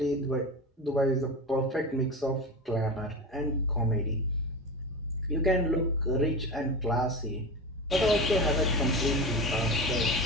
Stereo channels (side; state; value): both; normal; correlation 0.25